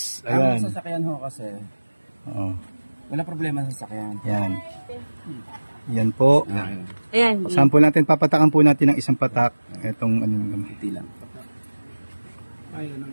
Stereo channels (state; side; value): inverted; both; correlation -1.00